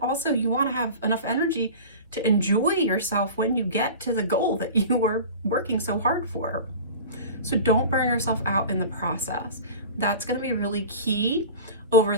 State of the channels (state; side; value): inverted; both; correlation -0.35